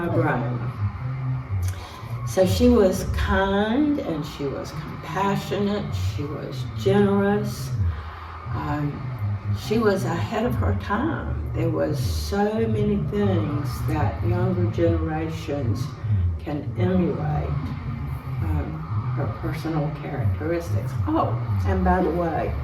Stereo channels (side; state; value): both; identical; correlation 1.00